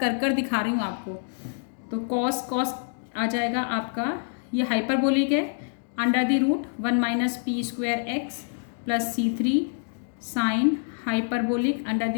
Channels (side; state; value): right; silent; digital silence